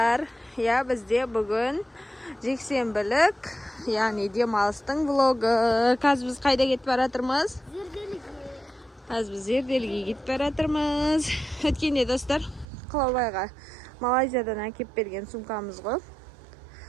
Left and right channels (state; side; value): drops out; left; at 12.7 s